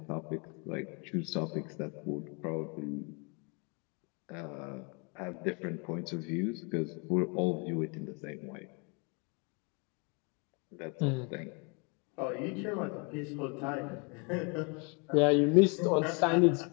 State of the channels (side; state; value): right; quieter; 33.2 dB